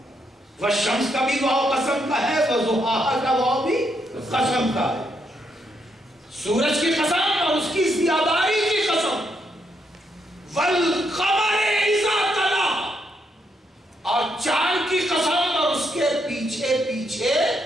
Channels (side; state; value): both; normal; correlation 0.78